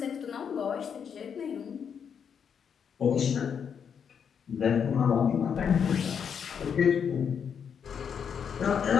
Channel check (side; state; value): right; quieter; 7.3 dB